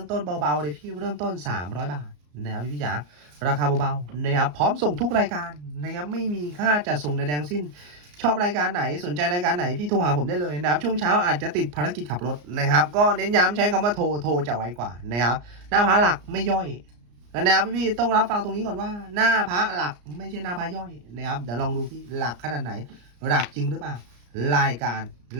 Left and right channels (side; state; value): left; late; 34 ms